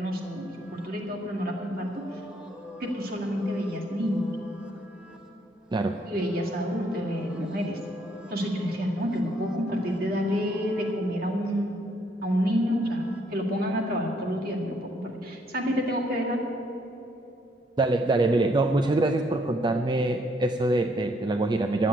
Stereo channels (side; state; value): both; normal; correlation 0.70